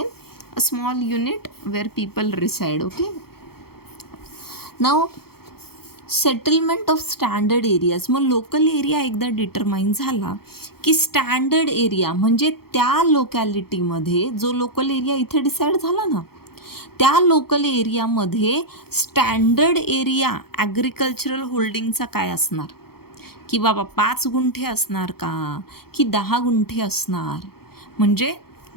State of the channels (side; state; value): right; late; 0.95 ms